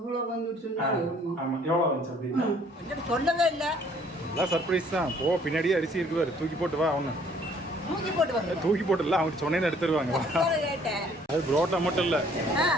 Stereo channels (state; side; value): normal; both; correlation 0.60